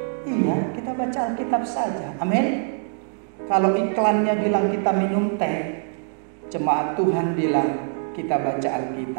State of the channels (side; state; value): left; silent; 63 dB below the other